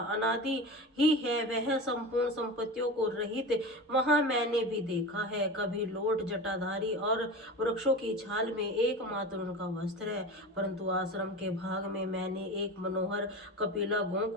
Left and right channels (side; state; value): both; normal; correlation 0.29